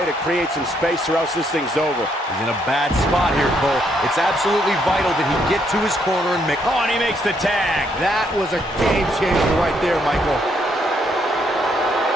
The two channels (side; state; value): both; normal; correlation 0.73